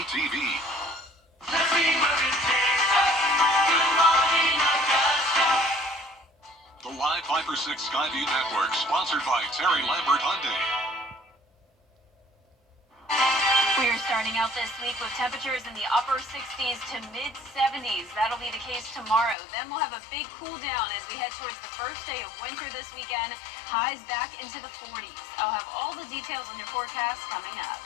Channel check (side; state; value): right; drops out; at 19.4 s